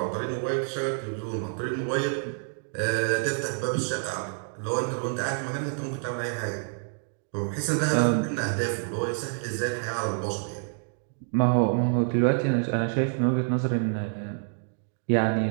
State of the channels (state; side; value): silent; left; 59 dB below the other